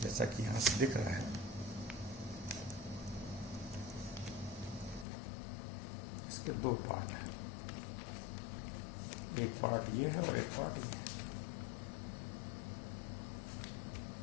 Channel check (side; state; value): right; drops out; at 5.1 s